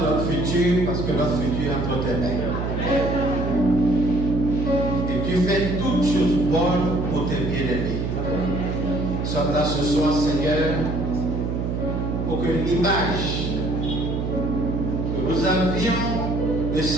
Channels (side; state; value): right; noise; hum, 2 dB below the sound